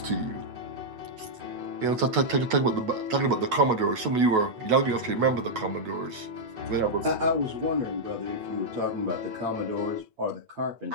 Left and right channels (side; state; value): left; late; 8.3 ms